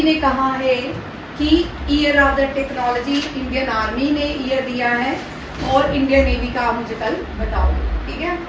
ने कहा है कि year of the technology Indian army ने ईयर दिया है, और इंडियन नेवी का आप मुझे कल बताओगे, ठीक है।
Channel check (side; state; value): both; identical; correlation 1.00